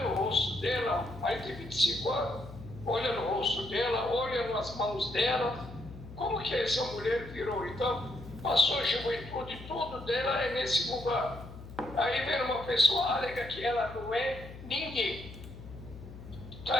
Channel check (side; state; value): left; noise; hum, 14 dB below the sound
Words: no rosto dela, mais de 25 anos, olha no rosto dela, olha nas mãos dela, como que essa mulher virou? Então, passou a juventude, tudo dela é nesse lugar. Aí vem uma pessoa, alega que ela não é ninguém.